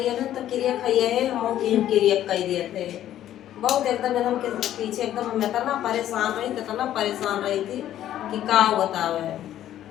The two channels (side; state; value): right; quieter; 12.0 dB